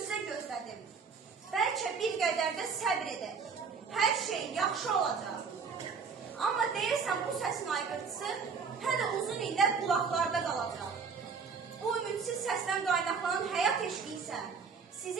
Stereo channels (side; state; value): left; quieter; 5.5 dB